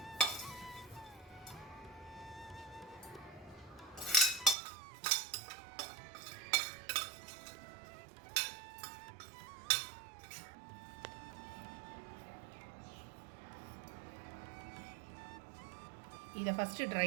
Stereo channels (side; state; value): left; drops out; at 4.5 s